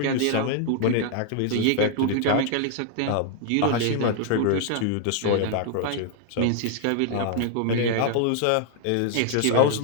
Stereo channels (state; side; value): different; both; correlation 0.00